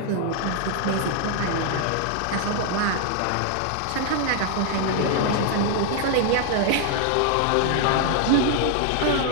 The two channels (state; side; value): different; both; correlation 0.00